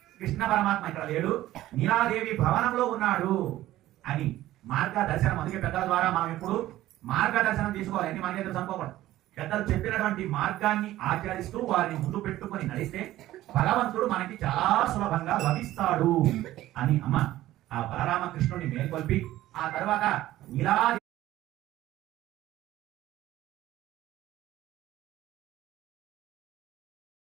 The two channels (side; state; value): left; quieter; 14.9 dB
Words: కృష్ణ పరమాత్మ ఇక్కడ లేడు, నీలాదేవి భవనంలో ఉన్నాడు అని మార్గ దర్శనం. అందుకే పెద్దల ద్వారా మనం ఎప్పుడు మార్గదర్శనం తీసుకోవాలి. అన్ని మనకే తెలుసు అనుకోకూడదు. పెద్దలు చెప్పినటువంటి మార్గాన్ని ఆచరిస్తూ వారిని ముందు పెట్టుకొని నడిస్తే భగవంతుడు మనకి చాలా సులభంగా లభిస్తాడు అని అమ్మ ఆ బలరామ కృష్ణుడిని మేల్కొల్పి, ఆ తర్వాత నీలాదేవి